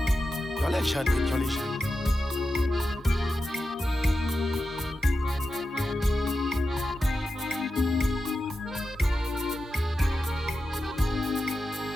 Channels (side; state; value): both; normal; correlation 0.90